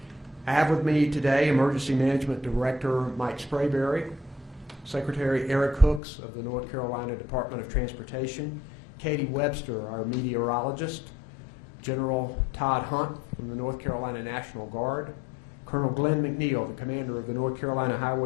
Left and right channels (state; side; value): drops out; right; at 6.0 s